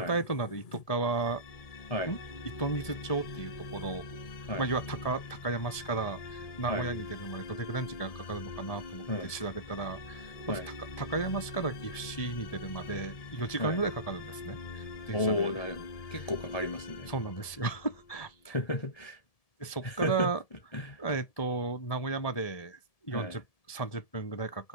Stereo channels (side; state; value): right; late; 1.7 ms